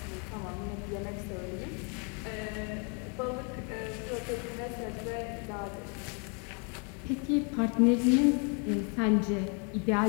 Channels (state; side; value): quieter; right; 36.9 dB